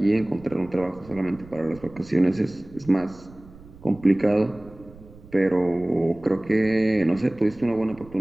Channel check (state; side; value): noise; right; rumble, 21 dB below the sound